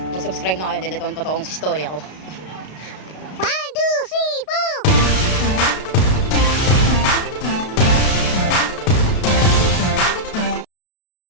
mag-subscribe na kayo dahil ito ang totoong story ako. 1, 2, 3, 4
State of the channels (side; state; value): right; late; 33 ms